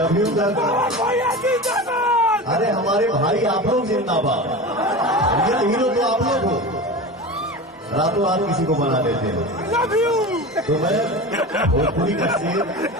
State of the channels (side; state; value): both; normal; correlation 0.29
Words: you भैया जिंदाबाद। अरे हमारे भाई आप लोग जिंदाबाद। रियल हीरो तो आप लोग हो, रातों रात किसी को बना देते हो। Love you. तो मैं भोजपुरी का शेर